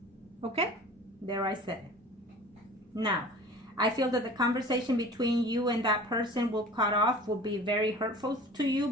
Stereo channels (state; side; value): normal; both; correlation 0.42